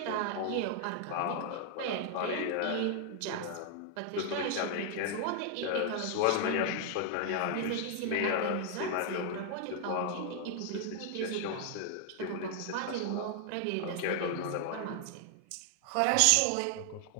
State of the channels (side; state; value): both; different; correlation 0.00